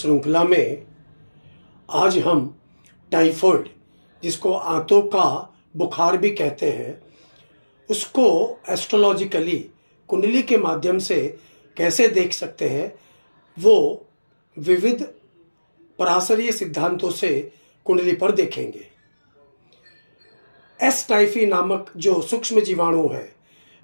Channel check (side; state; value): both; inverted; correlation -1.00